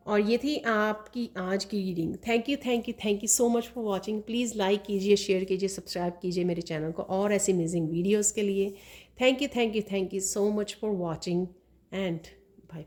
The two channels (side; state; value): both; identical; correlation 1.00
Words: और ये थी आपकी आज की reading. Thank you thank you thank you so much for watching. Please like कीजिए, शेयर कीजिए, सब्सक्राइब कीजिए मेरे चैनल को और ऐसे अमेजिंग वीडियोज़ के लिए। Thank you thank you thank you so much for watching and bye